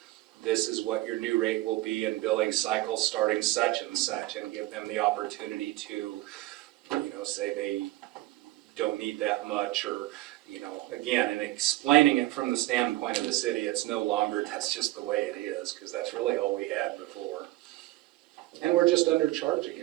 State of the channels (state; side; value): quieter; left; 17.7 dB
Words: This is what your new rate will be in billing cycle starting such and such, and give them the opportunity to, you know, say they don't need that much, or, you know, again, and explaining it from the standpoint of the city, it's no longer, that's just the way it is, because that's really all we had before. And we're just undercharging,